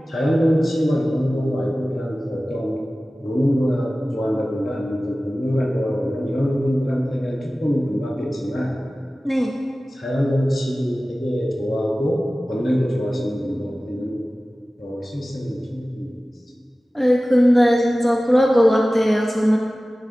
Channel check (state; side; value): normal; both; correlation 0.96